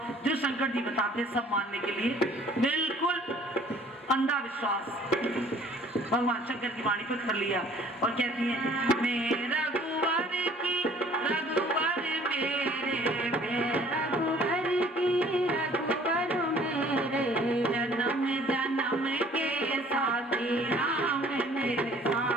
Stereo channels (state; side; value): normal; both; correlation 0.54